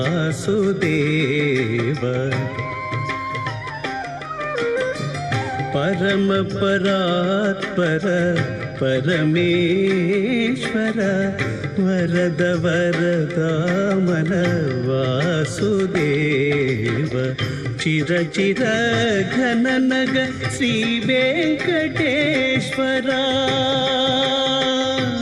పరమ పరాత్పర పరమేశ్వర వరద వరదామల వాసుదేవ. చిర చిర ఘన నగ శ్రీ వెంకటేశ్వర.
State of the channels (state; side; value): identical; both; correlation 1.00